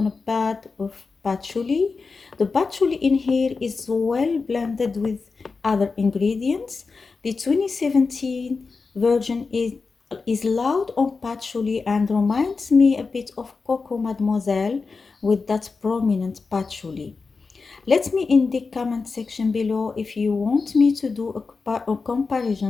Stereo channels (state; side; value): quieter; right; 4.4 dB